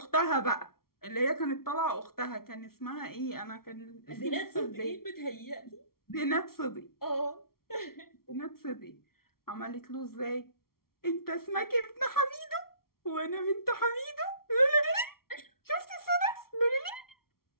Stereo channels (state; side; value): late; right; 0.94 ms